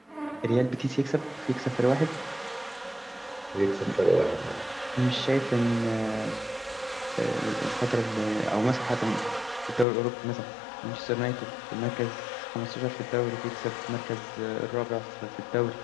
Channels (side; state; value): right; drops out; at 9.9 s